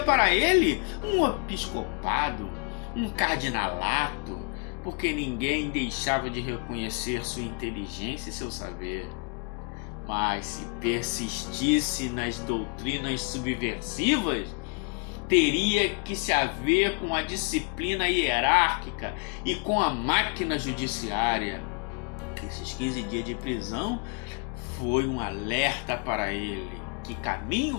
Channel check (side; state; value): right; quieter; 36.8 dB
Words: para ele um episcopado, um cardinalato, porque ninguém deixava de reconhecer sua inteligência e seu saber. Mas se persistisse nas doutrinas subversivas, teria que se haver com a disciplina hierárquica e com a máquina judiciária. Esses 15 dias de prisão foi um alerta para ele. Que caminho